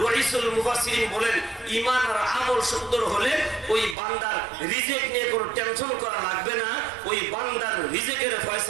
রাইসুল মুফাসসিরিন বলেন, ঈমান আর আমল সুন্দর হলে ওই বান্দার রিজিক নিয়ে কোনো টেনশন করা লাগবে না। ওই বান্দার রিজিকের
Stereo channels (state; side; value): drops out; left; at 4.0 s